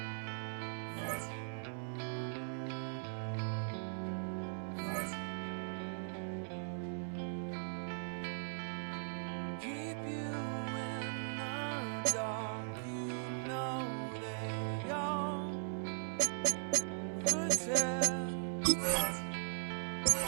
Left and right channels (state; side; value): silent; left; digital silence